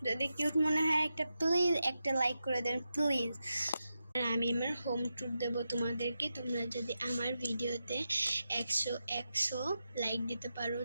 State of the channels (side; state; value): both; inverted; correlation -0.89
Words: যদি কিউট মনে হয় প্লিজ একটা লাইক করে দেন প্লিজ। আর আমি আমার হোম ট্যুর দেবো তোমাদেরকে। তোমরা যদি আমার ভিডিওতে 100 লাইক দিতে পারো,